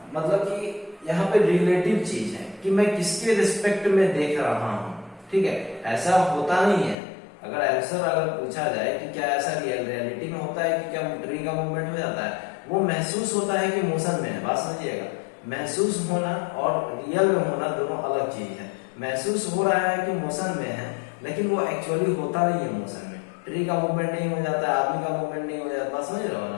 मतलब कि यहाँ पे रिलेटिव चीज है कि मैं किसके रिस्पेक्ट में देख रहा हूँ, ठीक है। ऐसा होता नहीं है, अगर आंसर अगर पूछा जाए कि क्या ऐसा रियलिटी में होता है कि क्या ट्री का मूवमेंट हो जाता है, वो महसूस होता है कि मोशन में है। बात समझिएगा, महसूस होना और रियल में होना दोनों अलग चीज है। महसूस हो रहा है कि मोशन में है, लेकिन वो एक्चुअली होता नहीं है मोशन में। ट्री का मूवमेंट नहीं हो जाता है, आदमी का मूवमेंट नहीं हो जाता, बात समझ रहे हो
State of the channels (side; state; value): right; drops out; at 7.0 s